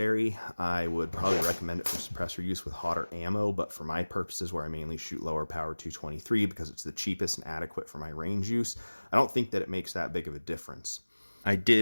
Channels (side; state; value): both; inverted; correlation -1.00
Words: I would probably recommend it for suppressor use with hotter ammo, but for my purposes where I mainly shoot lower power 223 because it's the cheapest and adequate for my range use, I don't think that it makes that big of a difference. I